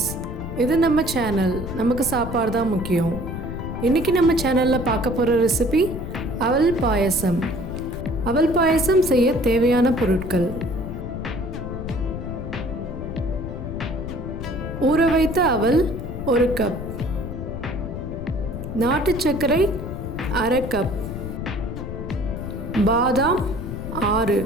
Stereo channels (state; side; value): noise; left; rumble, 7 dB below the sound